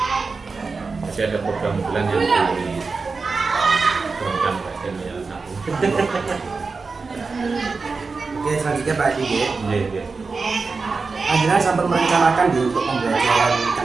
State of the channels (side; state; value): left; quieter; 4.4 dB